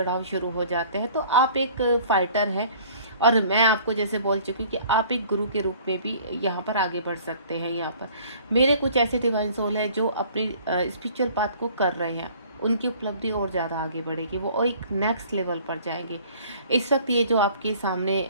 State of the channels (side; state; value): both; inverted; correlation -0.52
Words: शुरू हो जाते हैं। तो आप एक फाइटर हैं, और मैं आपको जैसे बोल चुकी हूँ कि आप एक गुरु के रूप में भी यहाँ पर आगे बढ़ सकते हैं। यहाँ पर मेरे कुछ ऐसे डिवाइन सोल है जो अपनी स्पिरिचुअल पाथ को कर रहे हैं, उनकी उपलब्धि और ज़्यादा आगे बढ़ेगी, वो एक नेक्स्ट लेवल पर जाएंगे। इस वक्त ये जो आपके सामने